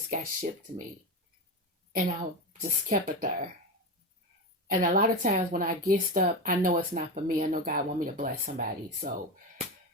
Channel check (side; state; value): both; normal; correlation 0.18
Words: got shipped to me. And I just kept it there. And a lot of times when I get stuff, I know it's not for me. I know God want me to bless somebody. So